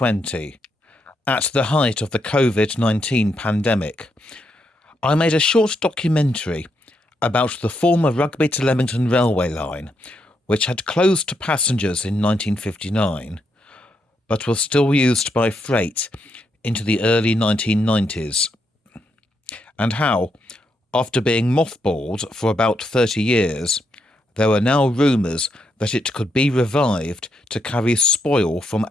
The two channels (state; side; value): normal; both; correlation 0.79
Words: at the height of the COVID-19 pandemic, I made a short documentary about the former Rugby to Leamington railway line, which had closed to passengers in 1959, but was still used by freight into the early 1990s, and how, after being mothballed for about 30 years, there were now rumours that it could be revived to carry spoil from